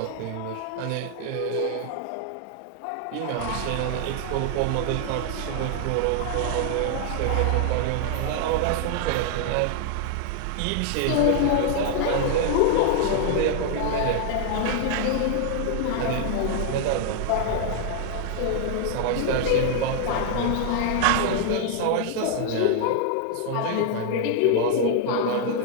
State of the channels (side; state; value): both; different; correlation 0.00